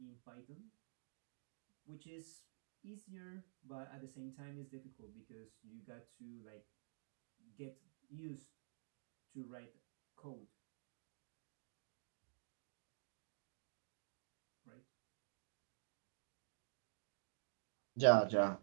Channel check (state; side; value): silent; left; digital silence